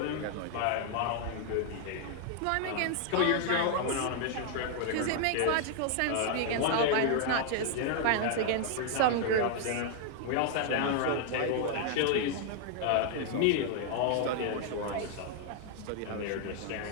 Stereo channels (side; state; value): both; different; correlation 0.00